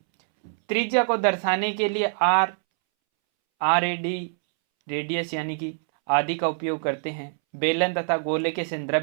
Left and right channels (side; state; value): left; silent; 62 dB below the other